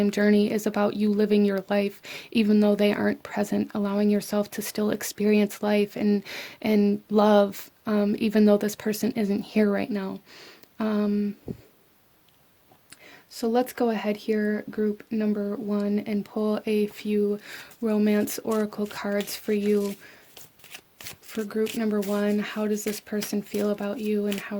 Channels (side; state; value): both; identical; correlation 1.00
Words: journey is about you living your life even though they aren't present, allowing yourself to still experience life and love, even though this person isn't here right now. So let's go ahead here, group number one, and pull a few romance oracle cards for you. For group number one, how does this person feel about you and how